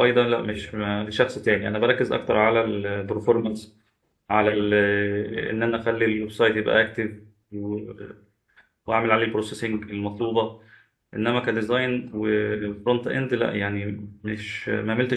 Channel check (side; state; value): both; identical; correlation 1.00